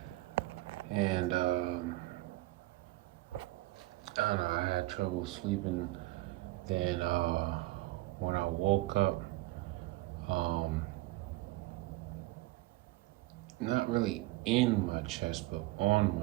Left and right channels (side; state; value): left; quieter; 18.5 dB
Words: And I don't know. I had trouble sleeping. Then when I woke up, um, not really in my chest, but on